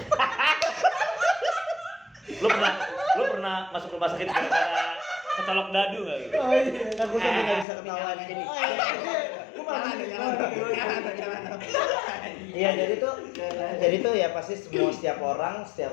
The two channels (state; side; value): drops out; right; at 7.7 s